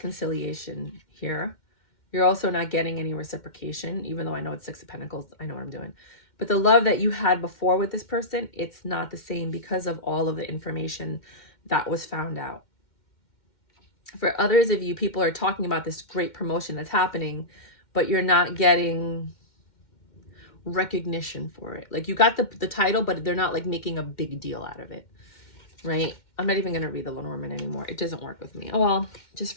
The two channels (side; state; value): right; late; 2.1 ms